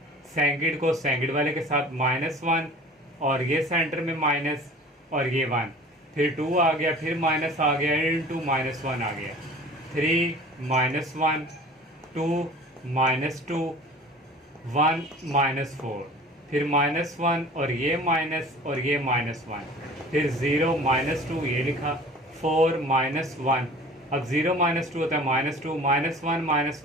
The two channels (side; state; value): both; normal; correlation 0.43